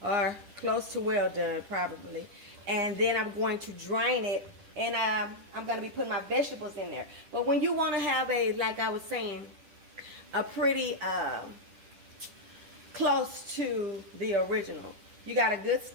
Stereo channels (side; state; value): left; late; 10 ms